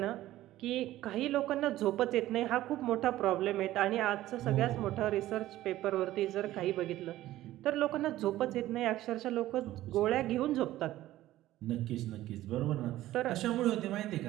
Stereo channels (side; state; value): left; quieter; 15.0 dB